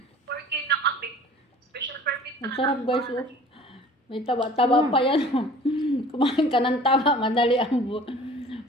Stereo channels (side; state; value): both; normal; correlation 0.47